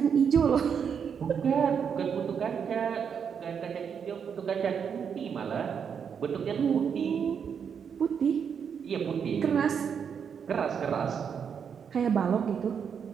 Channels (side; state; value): left; quieter; 7.1 dB